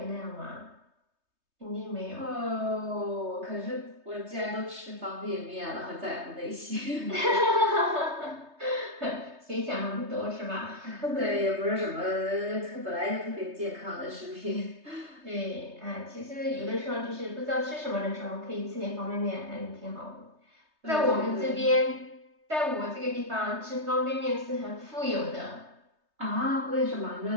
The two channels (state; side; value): late; left; 3.2 ms